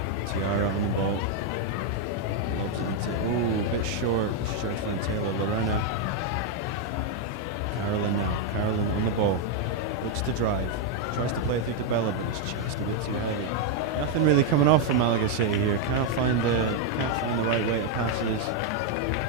Tiara on the ball. Lobs it into, ooh, a bit short. She tried to find Taylor. Lorena. Carolyn now. Carolyn on the ball. Looks to drive. Tries to play it through to Bella, but it's just a bit too heavy. Nothing really coming off from Malaga City here. Can't find the right way to passes.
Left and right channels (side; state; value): both; normal; correlation 0.01